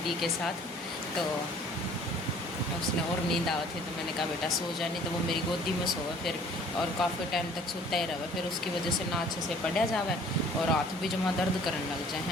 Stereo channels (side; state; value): both; normal; correlation 0.53